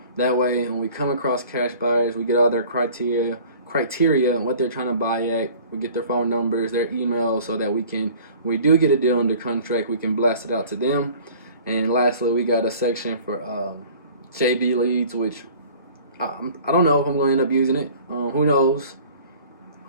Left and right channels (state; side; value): inverted; both; correlation -0.47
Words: that way when we come across cash buyers, we get all their criteria and what they're trying to buy at. We get their phone numbers, their emails, so that we can, when we do get a deal under contract, we can blast it out to them. And lastly, we got a section for JB leads, which I don't know if I'm going to end up using it. Who knows?